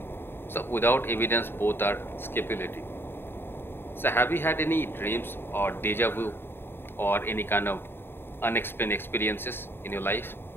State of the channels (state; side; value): late; right; 0.11 ms